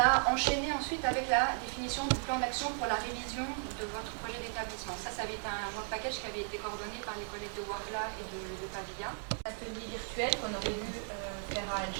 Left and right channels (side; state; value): left; silent; 54 dB below the other